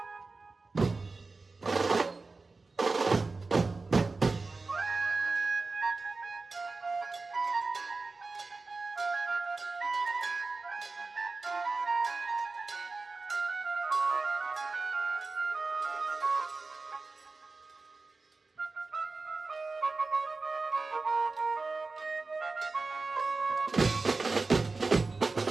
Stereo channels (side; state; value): left; quieter; 3.8 dB